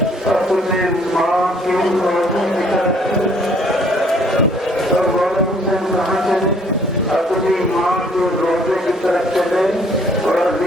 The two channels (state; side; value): normal; both; correlation 0.61